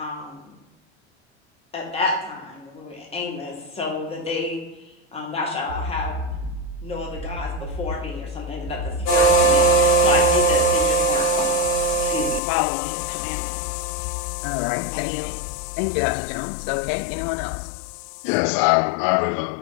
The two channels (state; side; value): drops out; right; at 12.4 s